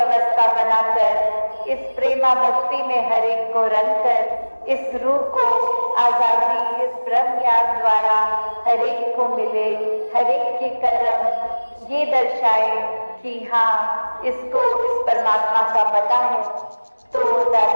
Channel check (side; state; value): both; inverted; correlation -1.00